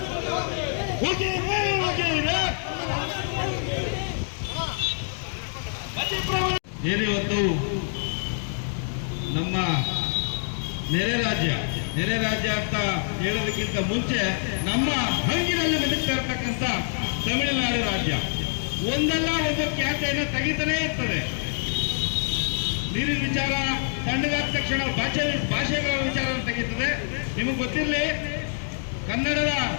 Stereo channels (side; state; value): right; silent; digital silence